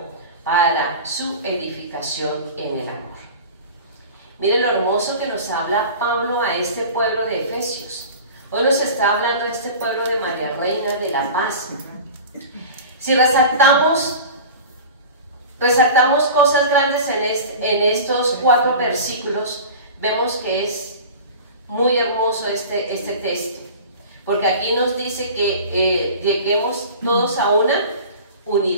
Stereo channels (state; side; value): inverted; both; correlation -0.36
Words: para su edificación en el amor. Miren lo hermoso que nos habla Pablo a este pueblo de Efesios. Hoy nos está hablando de este pueblo de María Reina de la Paz. Si resaltamos cosas grandes en estos 4 versículos, vemos que es muy hermoso este texto, porque aquí nos dice que lleguemos todos a una